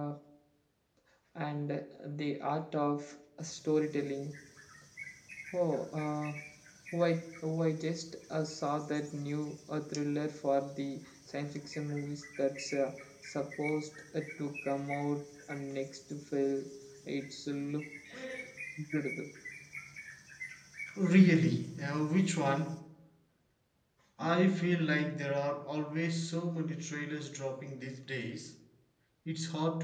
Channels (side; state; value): both; identical; correlation 1.00